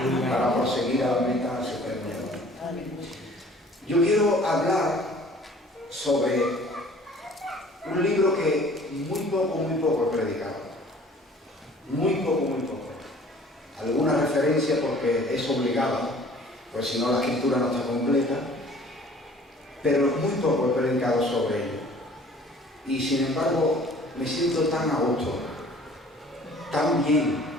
para proseguir a la meta superior. Yo quiero hablar sobre un libro que muy poco he predicado. Muy poco. Alguna referencia porque es obligada, pues si no la escritura no está completa, pero muy poco he predicado sobre ello. Y sin embargo, me siento tan a gusto, tan bien,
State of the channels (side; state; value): both; normal; correlation 0.51